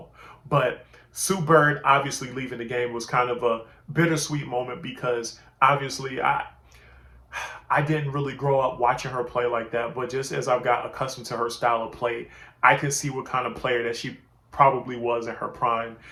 But Sue Bird obviously leaving the game was kind of a bittersweet moment because obviously I didn't really grow up watching her play like that, but just as I've got accustomed to her style of play, I can see what kind of player that she probably was in her prime.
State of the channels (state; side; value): identical; both; correlation 1.00